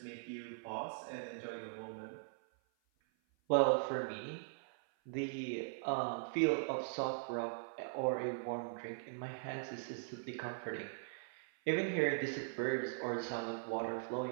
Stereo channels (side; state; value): left; silent; 51 dB below the other